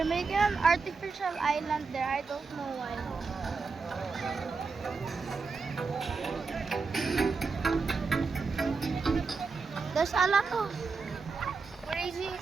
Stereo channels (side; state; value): left; quieter; 4.6 dB